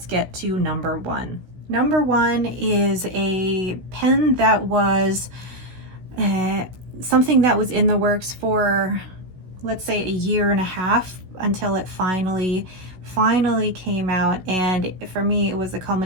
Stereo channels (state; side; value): late; left; 16 ms